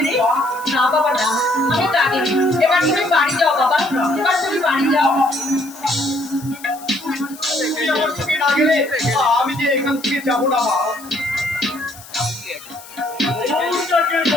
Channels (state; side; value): noise; left; hiss, 19 dB below the sound